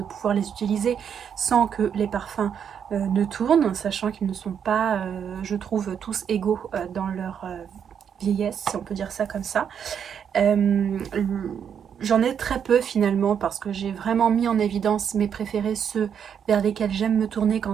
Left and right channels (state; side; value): quieter; left; 7.9 dB